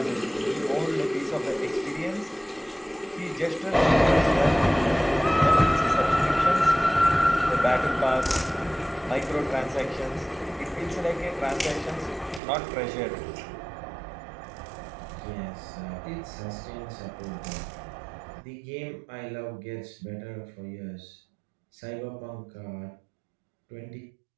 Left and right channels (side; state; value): left; drops out; at 12.4 s